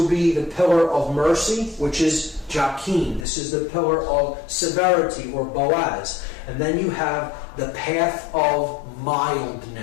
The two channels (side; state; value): right; drops out; at 3.2 s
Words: be the pillar of mercy, which is Jachin. This is the pillar of severity, or Boaz. And then you have the path of